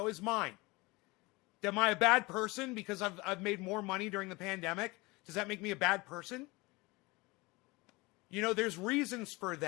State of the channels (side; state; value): right; quieter; 23.6 dB